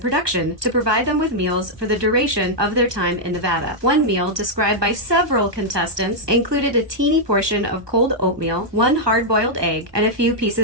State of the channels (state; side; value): late; left; 1.2 ms